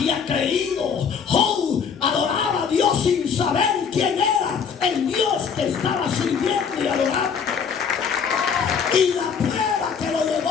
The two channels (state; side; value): quieter; right; 6.5 dB